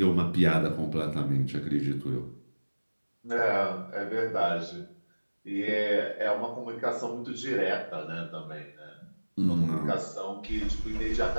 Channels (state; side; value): inverted; both; correlation -1.00